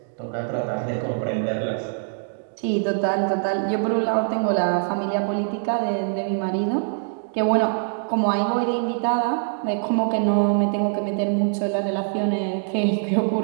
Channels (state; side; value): silent; left; 63 dB below the other